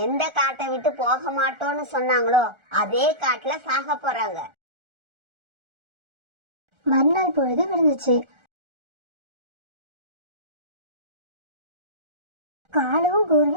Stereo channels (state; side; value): late; left; 1.4 ms